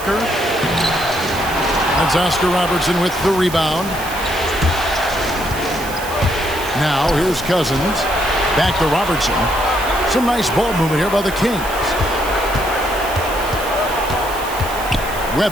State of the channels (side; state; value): right; noise; hiss, 13 dB below the sound